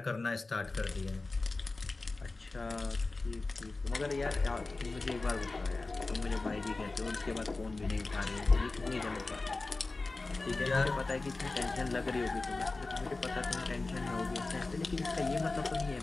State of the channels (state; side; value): quieter; right; 3.5 dB